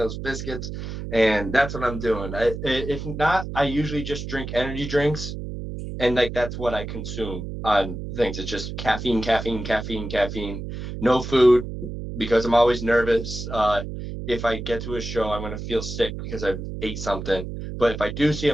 biscuits, and that's what I'm doing. If not, I usually just drink energy drinks, and like that's what I consume on things. It's just caffeine, caffeine, caffeine, caffeine. No food because I'm always nervous. If I get to a show, I'm gonna feel sick because I ate something. But if I do see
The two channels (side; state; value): right; noise; hum, 7 dB below the sound